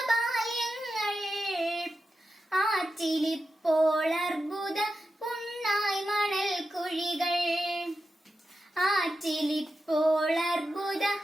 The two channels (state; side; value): normal; both; correlation 0.90